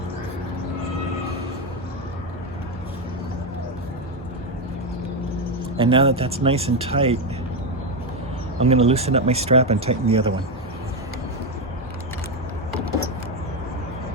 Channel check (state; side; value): normal; both; correlation 0.08